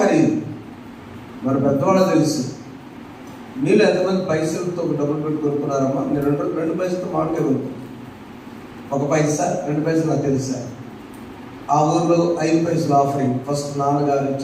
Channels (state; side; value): identical; both; correlation 1.00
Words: మరి పెద్దవాళ్ళు తెలుసు. మీరు ఎంతమంది పైసలతో డబ్బులు పెట్టి కొనుక్కున్నారమ్మా? మీరు 2 పైసలతో మామిడికాయ కొనుక్కుంటారు. 1 పైసా 2 పైసలు నాకు తెలుసా. ఆ ఊర్లో 5 పైసలు ఆఫరింగ్. ఫస్ట్ నాన్నగారు